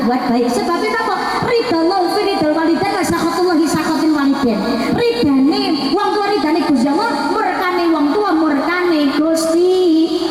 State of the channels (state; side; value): identical; both; correlation 1.00